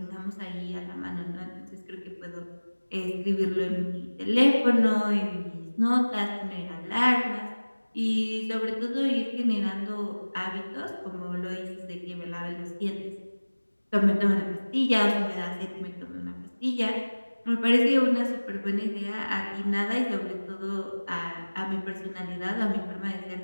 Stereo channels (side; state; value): both; inverted; correlation -1.00